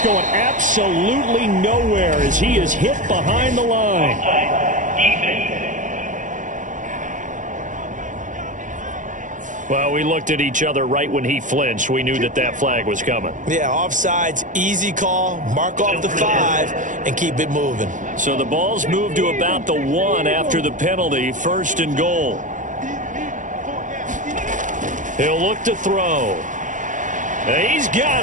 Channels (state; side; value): late; left; 0.37 ms